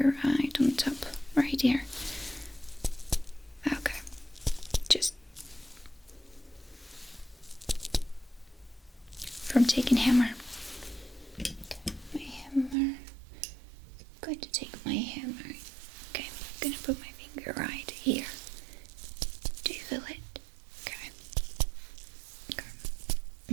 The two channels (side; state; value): left; drops out; at 12.8 s